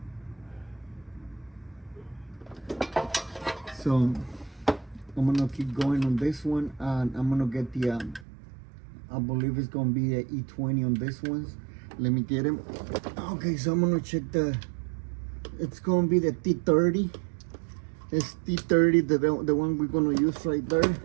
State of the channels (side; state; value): left; drops out; at 8.2 s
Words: So I'm gonna keep going on this one, and I'm gonna get the I believe it's gonna be the E20 on this ones. Let me get him. Okay, so I'm gonna check it's gonna be the T30. It's T30, the one we're gonna use right there.